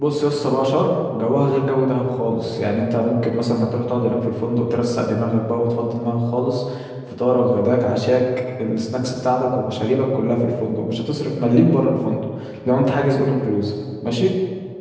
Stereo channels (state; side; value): identical; both; correlation 1.00